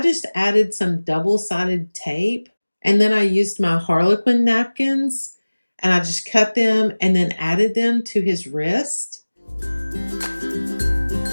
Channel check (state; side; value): inverted; both; correlation -1.00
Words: just added some double-sided tape, and then I used my Harlequin napkins, and I just cut them and then added them to his wrist.